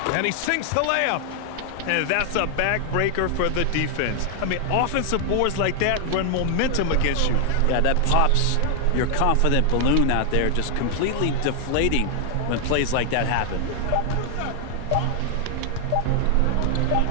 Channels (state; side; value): different; both; correlation 0.00